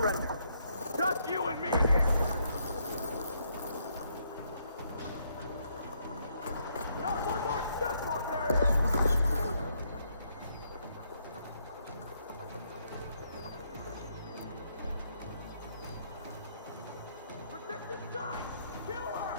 Just you and me here. Not one more step, barbarian! Protect this guy! Kill her!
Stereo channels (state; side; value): inverted; both; correlation -0.73